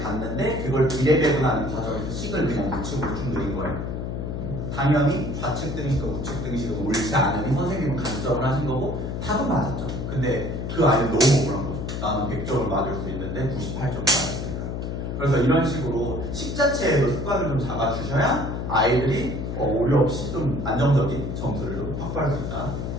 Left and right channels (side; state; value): left; noise; hum, 4 dB below the sound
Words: 그걸 비례 배분하는 과정에서 식을 그냥 우측으로 쭉 늘린 거예요. 당연히 좌측 등식과 우측 등식은 옳지 않으니 선생님은 감점을 하신 거고 답은 맞았죠. 근데 그 아이는 너무 억울한 거죠. 나는 100점을 맞을 수 있는데 98점을 맞았으니까. 그래서 이런 식으로 식 자체에도 습관을 좀 잡아주셔야 아이들이 오류 없이 좀 안정적인 점수를 좀 확보할 수 있다.